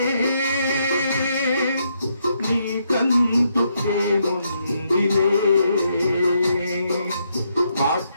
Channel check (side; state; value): both; inverted; correlation -0.77